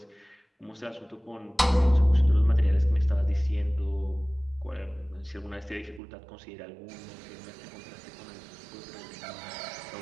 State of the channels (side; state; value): left; drops out; at 6.0 s